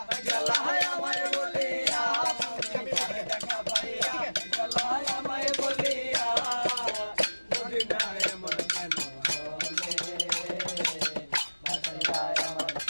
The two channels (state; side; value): inverted; both; correlation -1.00